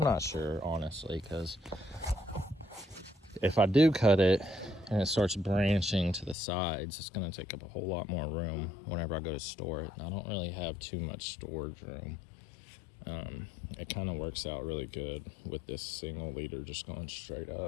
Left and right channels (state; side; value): drops out; right; at 6.4 s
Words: not sure, honestly, because if I do cut it and it starts branching to the sides, it's going to take up a whole lot more room whenever I go to store it. And I don't really have too much storage room. It kind of works out really good with this single leader just going straight